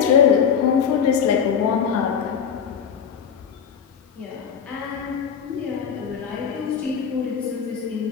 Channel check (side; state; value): right; quieter; 7.3 dB